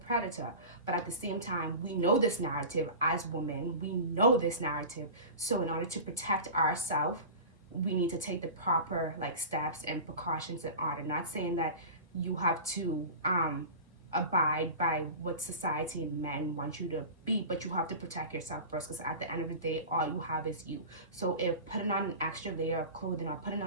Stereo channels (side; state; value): both; inverted; correlation -0.33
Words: predator. But at the same time, we know this narrative as women. We know this narrative. So in order to protect ourselves, we need to take the proper like steps and precautions in order. Not saying that you have to abide by what society and men want you to be, but you have to protect yourself first, because at the end of the day, all you have is you. So if putting on an extra layer of clothing, or putting